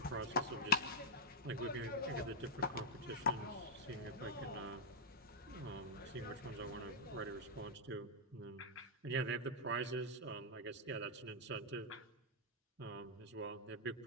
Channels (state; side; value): normal; both; correlation -0.05